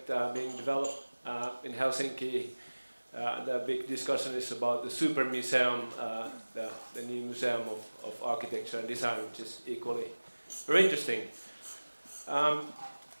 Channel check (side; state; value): both; inverted; correlation -1.00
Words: being developed in Helsinki. The big discussion is about the Super Museum, the new museum of architecture and design, which is equally very interesting.